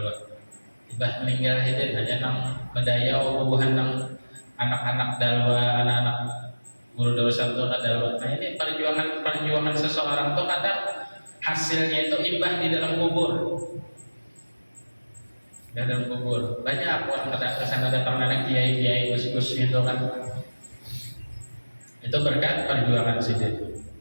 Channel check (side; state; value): both; inverted; correlation -1.00